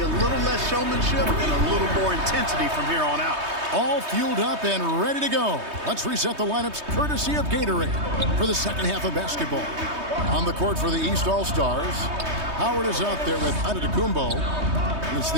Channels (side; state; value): left; late; 3.2 ms